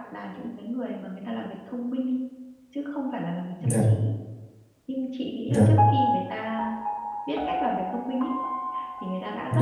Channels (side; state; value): both; identical; correlation 1.00